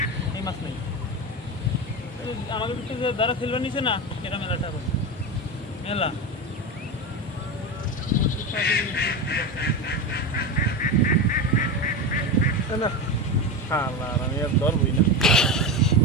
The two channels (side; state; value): both; normal; correlation 0.19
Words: এই মাছ নেই আমাদের যে যারা ফেলবার নিছে না এটা মেলাটা মেলা আমি আর ধরবই না